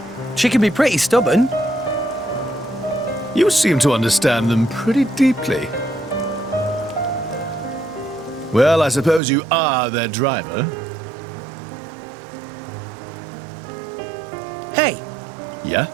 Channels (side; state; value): left; drops out; at 9.2 s